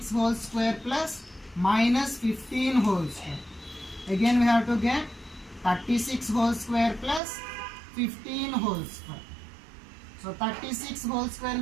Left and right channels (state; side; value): drops out; left; at 7.2 s